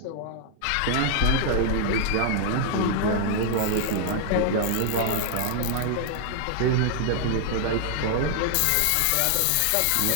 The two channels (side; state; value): both; different; correlation 0.00